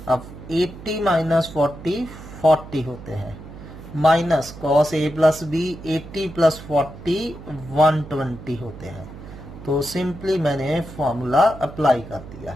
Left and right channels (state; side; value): noise; right; hum, 15 dB below the sound